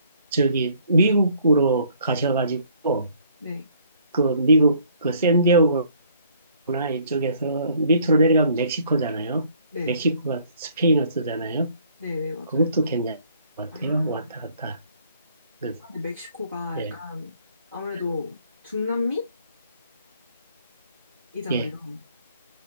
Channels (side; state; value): both; inverted; correlation -0.61